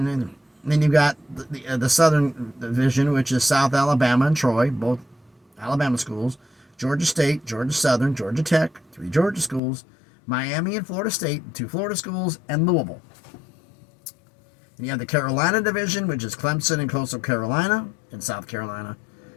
And then you got the Southern Division, which is South Alabama and Troy, both Alabama schools. Georgia State, Georgia Southern, Georgia Tech, 3 Georgia schools. Miami and Florida State, 2 Florida schools, and Louisville. And you have the Carolina Division, which is Clemson and Coastal Carolina in South Carolina.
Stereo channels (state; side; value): drops out; right; at 9.6 s